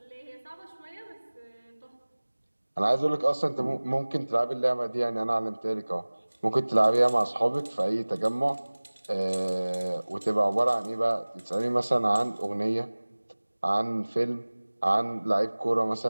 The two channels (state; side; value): inverted; both; correlation -1.00